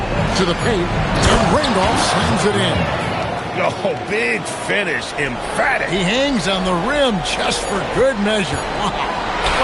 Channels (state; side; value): identical; both; correlation 1.00